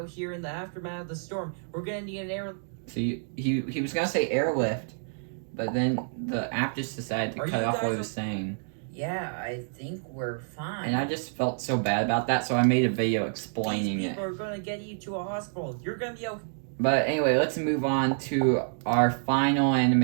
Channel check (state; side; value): silent; left; digital silence